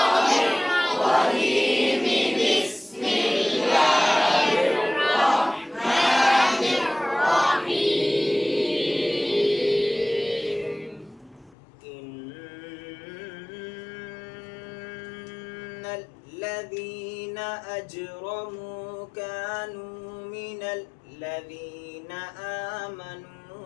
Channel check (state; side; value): drops out; right; at 11.6 s